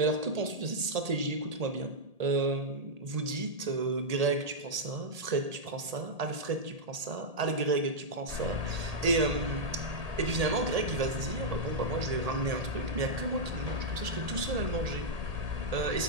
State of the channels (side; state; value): left; late; 1.8 ms